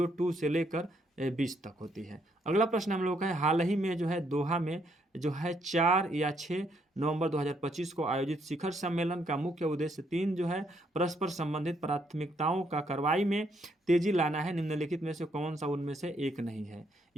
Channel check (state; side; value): normal; both; correlation 0.72